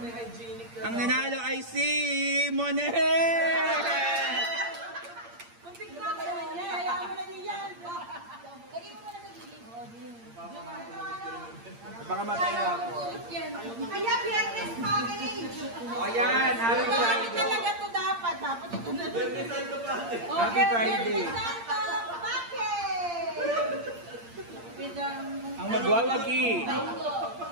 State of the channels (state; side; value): late; left; 8.7 ms